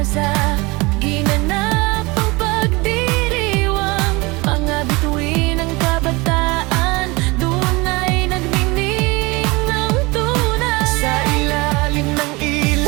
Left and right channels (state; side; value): quieter; left; 24.5 dB